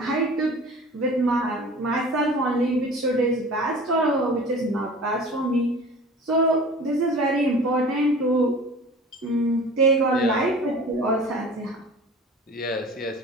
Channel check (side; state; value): both; normal; correlation 0.42